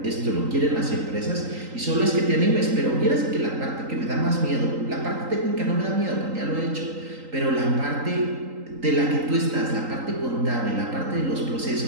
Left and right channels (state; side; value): late; left; 3.8 ms